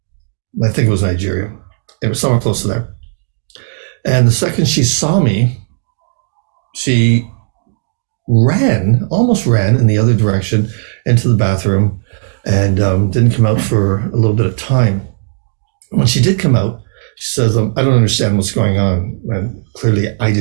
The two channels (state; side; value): silent; left; digital silence